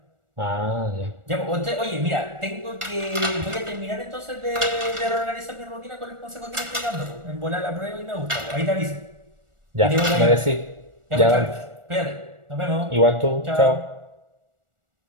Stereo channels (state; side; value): late; left; 1.4 ms